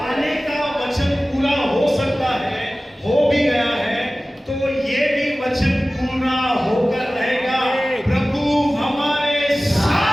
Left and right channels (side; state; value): both; normal; correlation 0.97